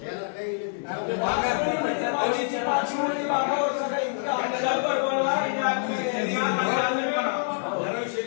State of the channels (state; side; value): silent; right; digital silence